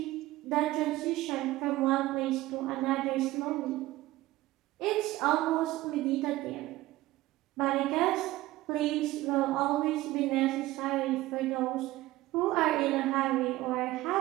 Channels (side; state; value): left; quieter; 17.4 dB